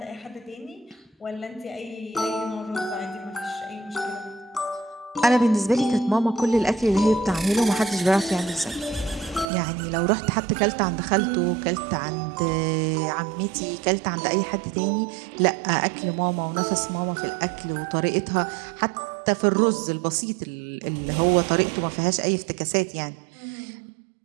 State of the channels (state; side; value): drops out; left; at 9.5 s